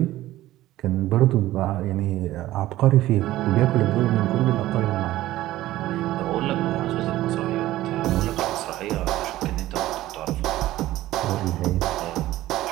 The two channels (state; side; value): quieter; left; 15.5 dB